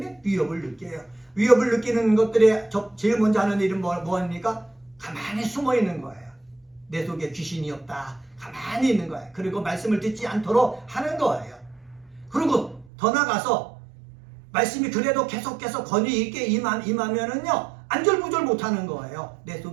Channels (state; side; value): drops out; left; at 12.9 s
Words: 위협을 느껴요. 위협을 느끼는 것들에 제일 먼저 하는 일은 뭐합니까? 가만히 숨어 있는 거예요. 내 속에 귀신이 없다. 가만히 있는 거예요. 그리고 말씀을 듣지 않도록 하는 거예요. 그리고 더 나가서 말씀이 그래도 계속해서 권위 있게 임하면은요, 안절부절 못하는 거예요. 내